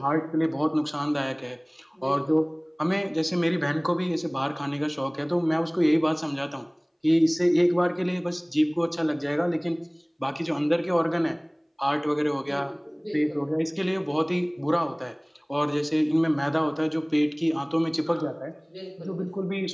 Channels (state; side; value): identical; both; correlation 1.00